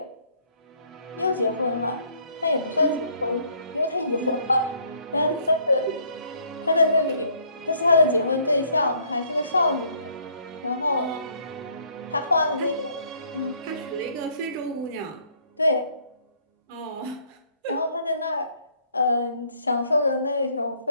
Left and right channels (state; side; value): inverted; both; correlation -0.64